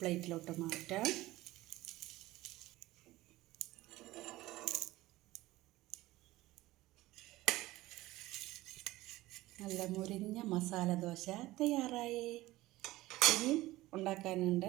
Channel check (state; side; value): quieter; left; 17.7 dB